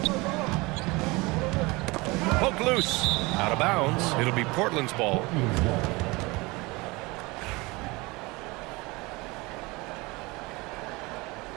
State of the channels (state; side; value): quieter; left; 23.9 dB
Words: Poke loose. Out of bounds. It'll be Portland's ball.